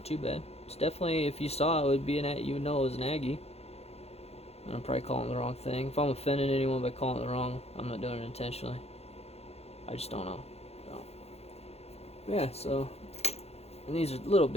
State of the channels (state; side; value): late; right; 0.30 ms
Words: too bad. It's definitely, if you saw it, would be you would know it was an Agee. And I'm probably calling the wrong thing. If I'm offending anyone by calling it the wrong, I'm not doing it intentionally. I just don't know. So, yeah, so... and these are little